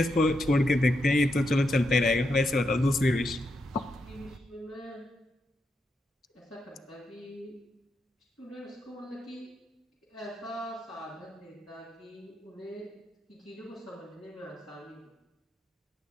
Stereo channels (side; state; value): both; normal; correlation 0.83